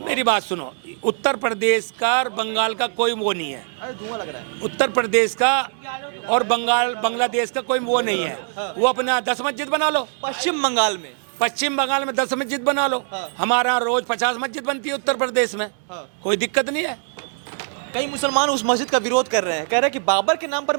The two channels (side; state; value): left; silent; 64 dB below the other